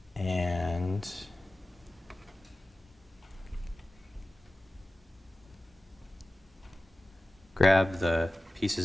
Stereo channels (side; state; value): both; normal; correlation 0.96